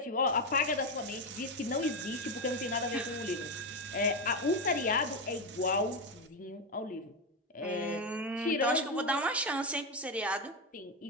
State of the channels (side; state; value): both; normal; correlation 0.11